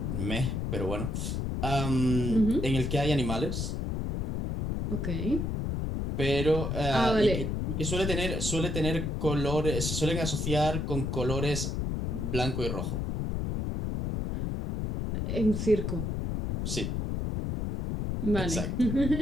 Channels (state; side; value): noise; left; rumble, 1 dB below the sound